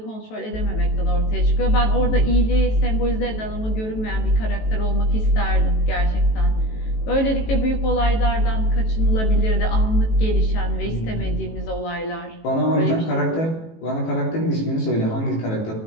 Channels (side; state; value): right; late; 18 ms